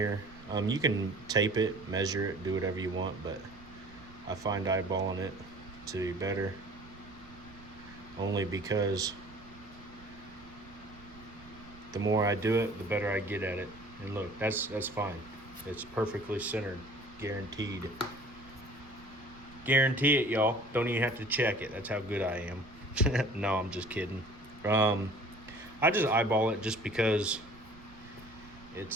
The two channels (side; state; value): right; noise; rumble, 20 dB below the sound